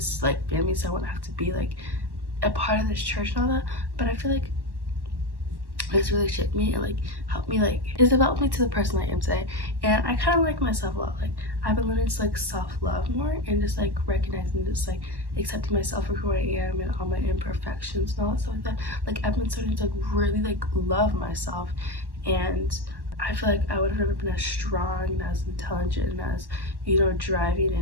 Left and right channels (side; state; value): left; late; 1.1 ms